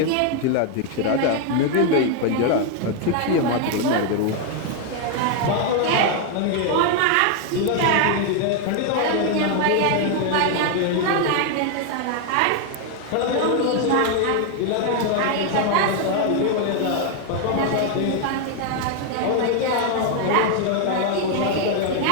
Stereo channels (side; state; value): both; different; correlation 0.00